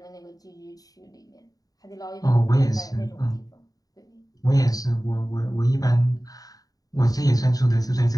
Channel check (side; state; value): right; late; 0.18 ms